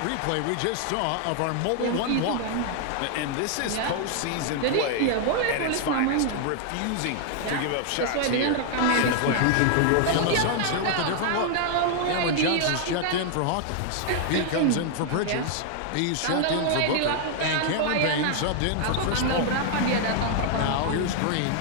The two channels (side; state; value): both; different; correlation 0.00